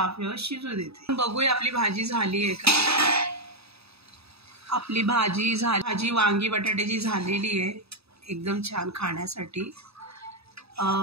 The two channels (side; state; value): left; late; 0.78 ms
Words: शिजू देते। बघूया आपली भाजी झाली आहे का। आपली भाजी वांगी बटाट्याची झालेली आहे, एकदम छान खाण्यासाठी।